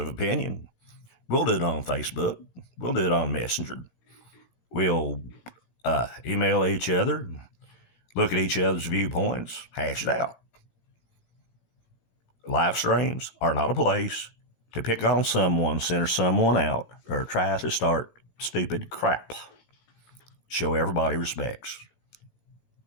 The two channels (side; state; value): right; late; 17 ms